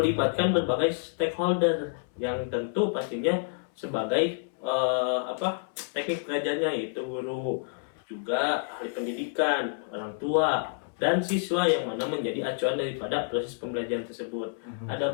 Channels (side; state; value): right; silent; 59 dB below the other